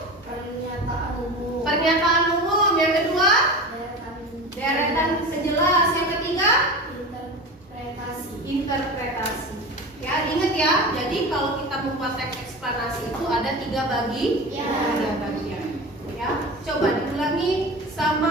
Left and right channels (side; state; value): both; normal; correlation 0.30